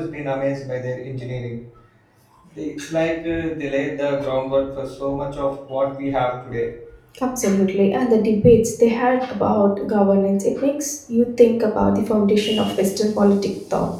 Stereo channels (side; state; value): both; identical; correlation 1.00